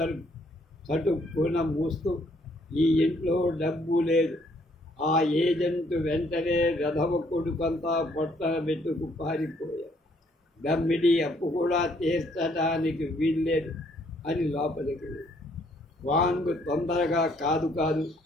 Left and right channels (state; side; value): normal; both; correlation 0.67